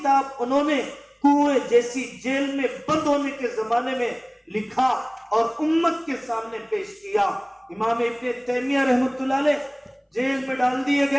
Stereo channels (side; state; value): both; identical; correlation 1.00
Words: انہوں نے کنویں جیسی جیل میں بند ہونے کے زمانے میں لکھا اور امت کے سامنے پیش کیا۔ امام ابن تیمیہ رحمت اللہ علیہ جیل میں ڈال دیے